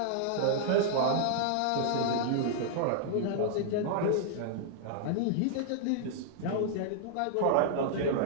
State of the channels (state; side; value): different; both; correlation -0.01